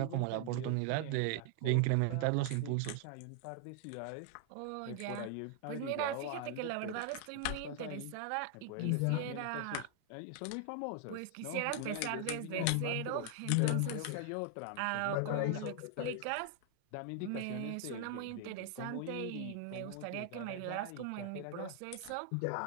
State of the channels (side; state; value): both; different; correlation 0.00